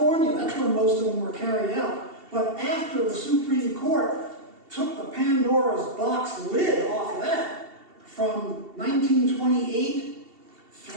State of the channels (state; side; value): late; left; 2.7 ms